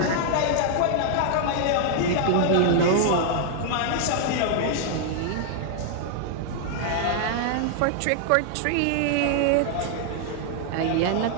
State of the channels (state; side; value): different; both; correlation 0.00